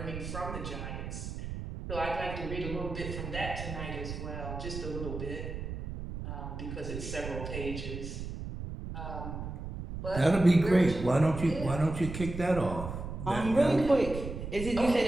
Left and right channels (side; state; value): right; noise; rumble, 7 dB below the sound